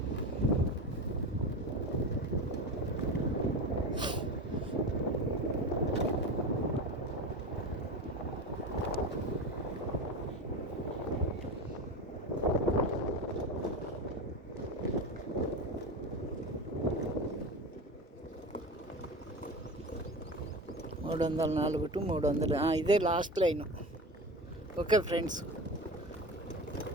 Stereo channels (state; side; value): normal; both; correlation 0.27